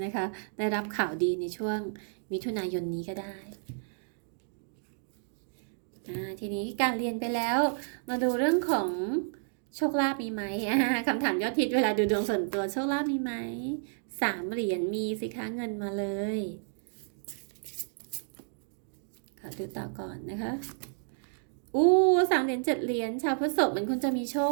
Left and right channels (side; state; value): left; silent; digital silence